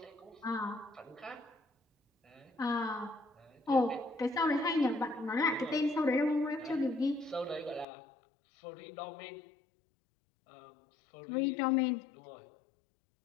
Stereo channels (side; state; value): right; drops out; at 7.9 s